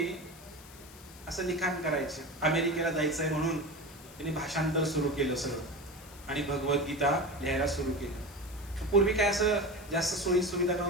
असं लिखाण करायचे, अमेरिकेला जायचंय म्हणून त्यांनी भाषांतर सुरू केलं सगळं आणि भगवद्गीता लिहायला सुरू केलं. पूर्वी काय असं जास्त सोयी सुविधा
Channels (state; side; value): noise; left; hiss, 20 dB below the sound